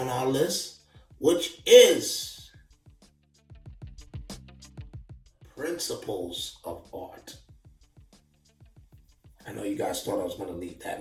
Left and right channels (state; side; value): identical; both; correlation 1.00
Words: our list, which is principles of art. I know you guys thought I was going to leave that